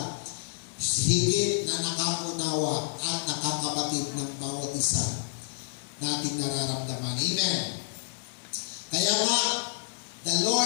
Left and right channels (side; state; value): right; silent; digital silence